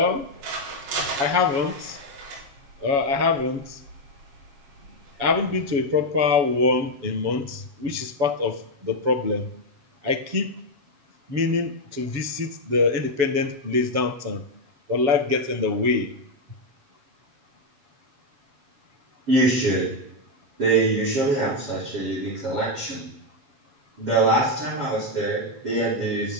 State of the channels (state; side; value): late; left; 7.1 ms